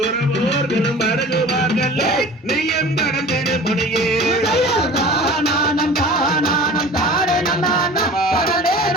அருகுவார்கள் நீயும் கடந்திடு முனியே தானம் தானம் தாரே நன்னானா தனலே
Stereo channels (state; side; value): normal; both; correlation 0.41